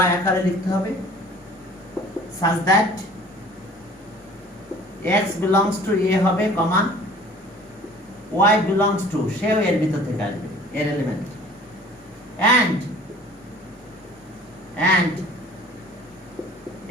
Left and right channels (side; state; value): both; normal; correlation 0.49